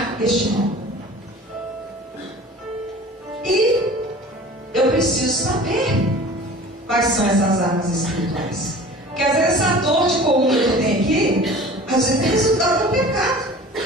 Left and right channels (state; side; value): normal; both; correlation 0.42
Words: este mal. E eu preciso saber quais são essas armas espirituais. Porque às vezes essa dor de coluna que eu tenho aqui, às vezes é resultado do pecado.